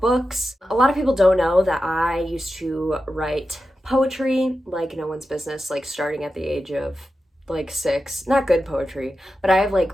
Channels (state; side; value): normal; both; correlation 0.91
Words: A lot of people don't know that I used to write poetry like no one's business, like starting at the age of like 6. Not good poetry, but I have